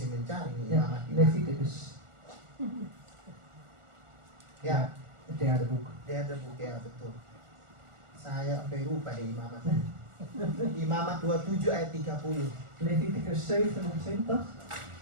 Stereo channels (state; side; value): late; left; 1.4 ms